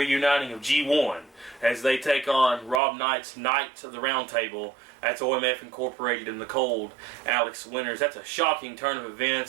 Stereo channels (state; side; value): drops out; left; at 2.8 s